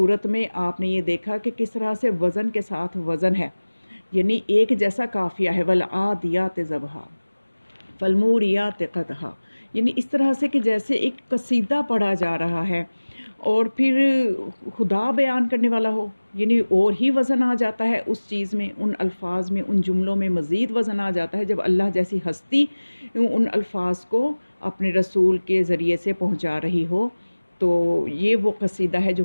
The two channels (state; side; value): inverted; both; correlation -1.00